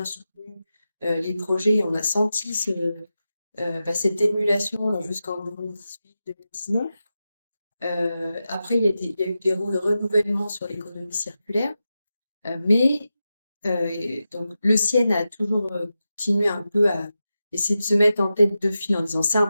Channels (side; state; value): both; inverted; correlation -0.91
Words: soutenu les projets. On a senti cette émulation jusqu'en 2018-2019. Après, il y a eu des renouvellements sur l'économie circulaire, mais donc le CIEN a toujours continué un peu à essayer de se mettre en tête de file en disant c'est